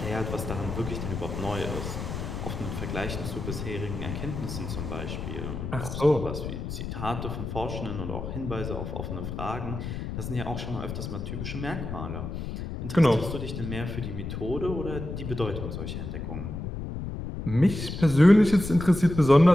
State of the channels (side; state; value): left; noise; rumble, 6 dB below the sound